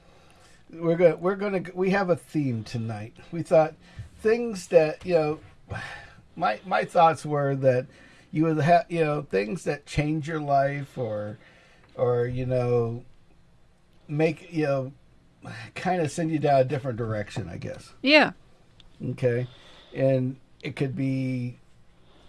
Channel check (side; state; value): both; identical; correlation 1.00